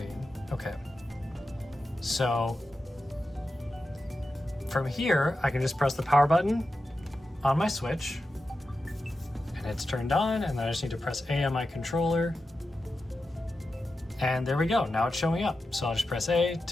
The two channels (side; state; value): both; normal; correlation 0.91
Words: Okay. So from here, I can just press the power button on my Switch and it's turned on, and then I just need to press A on my controller. And there we go, now it's showing up. So I'll just press A